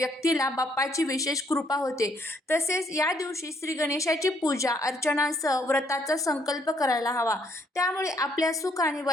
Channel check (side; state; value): both; normal; correlation 0.69